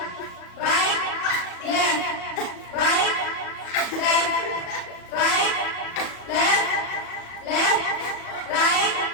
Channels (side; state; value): right; late; 37 ms